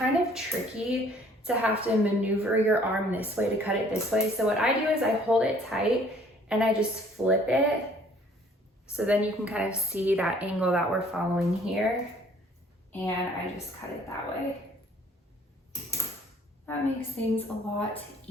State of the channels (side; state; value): both; normal; correlation 0.57